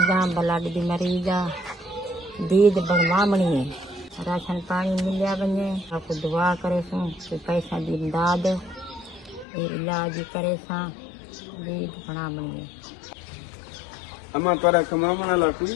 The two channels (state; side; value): drops out; right; at 9.5 s